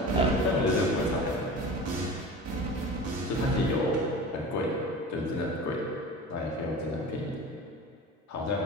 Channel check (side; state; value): both; normal; correlation 0.34